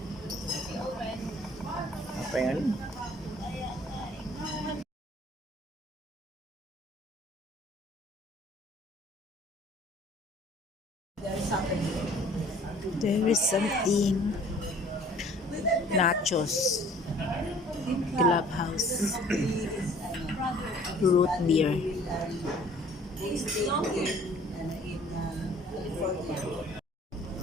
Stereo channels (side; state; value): both; normal; correlation 0.53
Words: Apa yang ini? There is something. Nachos. Clubhouse. Root beer.